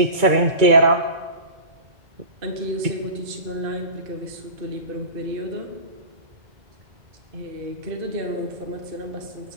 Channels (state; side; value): late; left; 2.2 ms